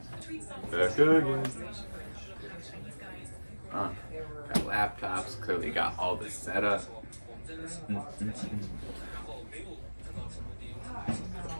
Back again. Got laptops, clearly got all this set up.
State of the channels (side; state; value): both; inverted; correlation -1.00